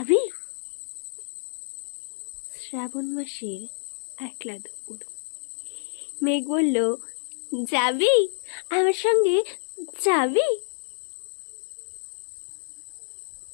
শ্রাবণ মাসের একলা দুপুর। মেঘ বলল, যাবি আমার সঙ্গে? যাবি?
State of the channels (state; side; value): silent; right; digital silence